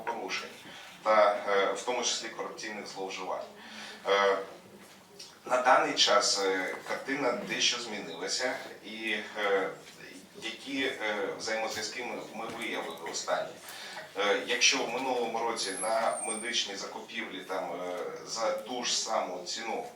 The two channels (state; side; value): identical; both; correlation 1.00